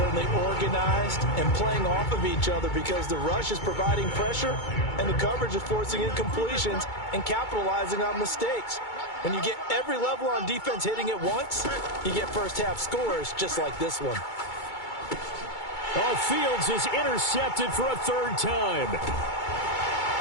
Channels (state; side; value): late; right; 2.3 ms